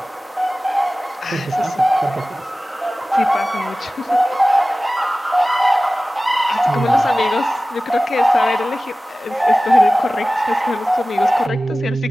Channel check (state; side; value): normal; both; correlation 0.97